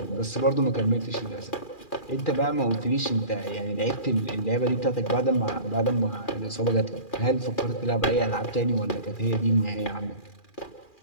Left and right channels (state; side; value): late; right; 2.4 ms